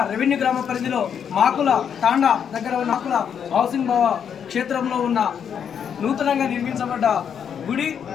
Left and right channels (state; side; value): quieter; right; 7.9 dB